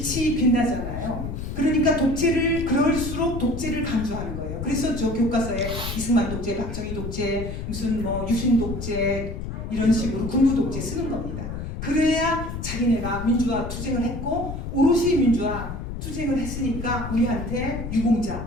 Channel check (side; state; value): left; noise; rumble, 6 dB below the sound